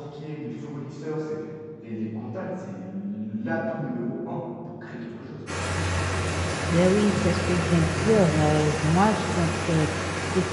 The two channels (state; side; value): identical; both; correlation 1.00